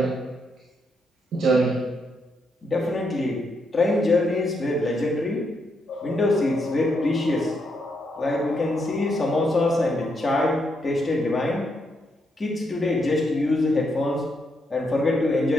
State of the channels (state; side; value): normal; both; correlation 0.79